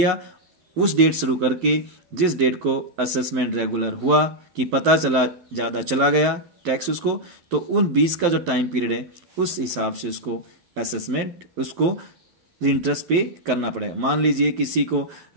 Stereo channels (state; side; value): late; left; 12 ms